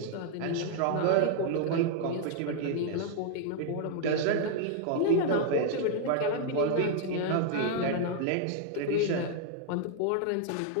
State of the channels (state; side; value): different; both; correlation 0.00